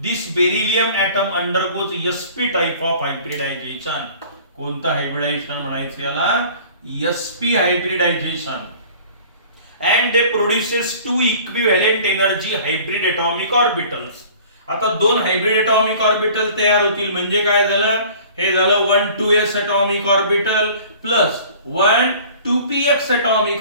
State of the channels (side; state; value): both; inverted; correlation -0.47